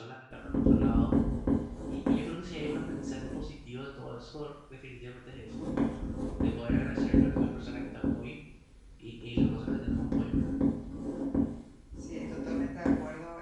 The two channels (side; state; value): both; identical; correlation 1.00